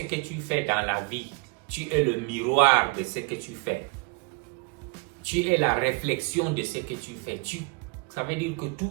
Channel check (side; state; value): left; quieter; 31.0 dB